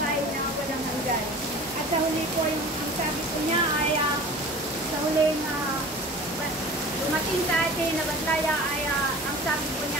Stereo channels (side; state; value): both; normal; correlation 0.39